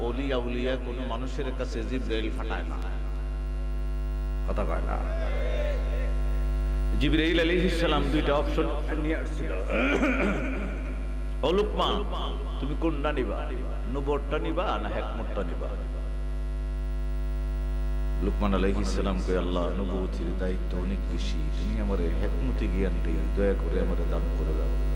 ওলি আউলিয়া কোনো মানুষের কাছে জিবরাইল পাঠায় না কথা কয় না জিবরাইল আলাইহিস সালাম দুইটা অপশন নিয়ে আসছিল ও লুকমান তুমি কোনটা নিবা নবুয়তটা নিবা না হিকমতটা নিবা লুকমান আলাইহিস সালাম কয় আল্লাহ নবুয়তের দায়িত্ব অনেক বেশি তুমি আমারে হিকমতি জ্ঞানটা দয়া করে আমারে দান করে দাও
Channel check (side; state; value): both; identical; correlation 1.00